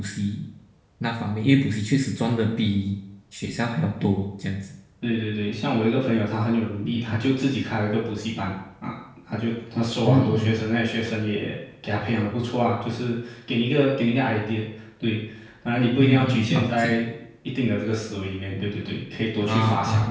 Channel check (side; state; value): both; identical; correlation 1.00